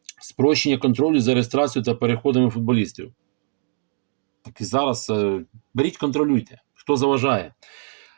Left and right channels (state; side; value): silent; left; 64 dB below the other